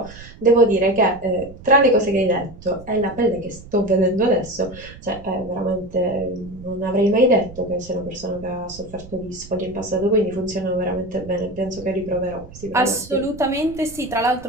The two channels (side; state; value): right; noise; rumble, 18 dB below the sound